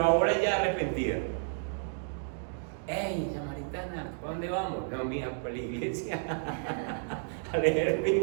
ahora ya arrepentida. ¡Ey, samaritana! ¿A dónde vamos? No, mija, para la iglesia a leer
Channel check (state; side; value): silent; left; digital silence